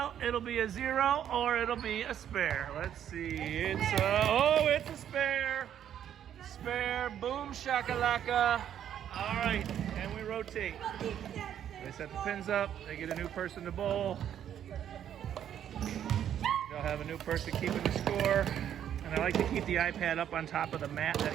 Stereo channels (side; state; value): left; quieter; 10.0 dB